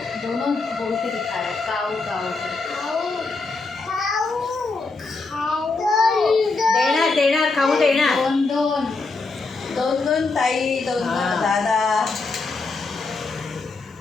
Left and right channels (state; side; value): quieter; right; 3.8 dB